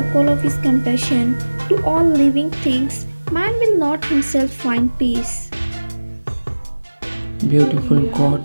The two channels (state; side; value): inverted; both; correlation -1.00